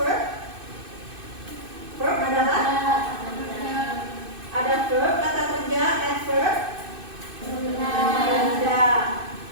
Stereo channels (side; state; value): left; late; 2.6 ms